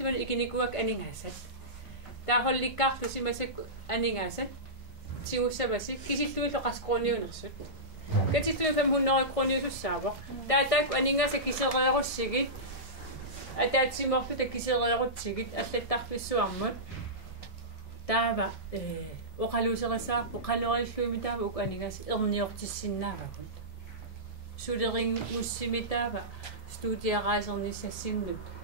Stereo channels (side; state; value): both; normal; correlation -0.17